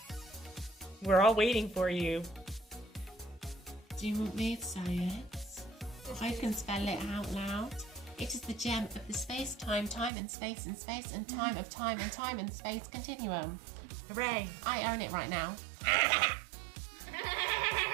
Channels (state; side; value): drops out; left; at 10.1 s